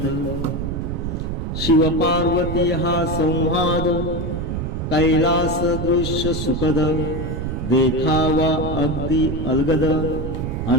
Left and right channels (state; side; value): noise; right; rumble, 3 dB below the sound